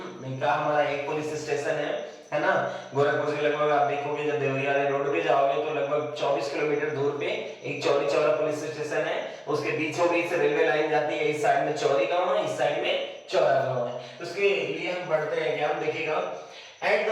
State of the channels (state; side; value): identical; both; correlation 1.00